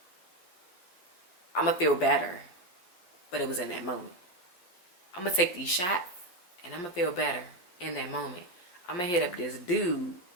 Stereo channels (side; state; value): right; late; 11 ms